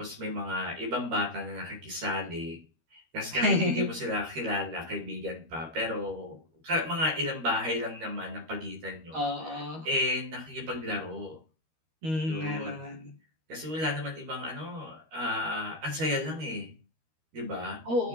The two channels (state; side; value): late; left; 13 ms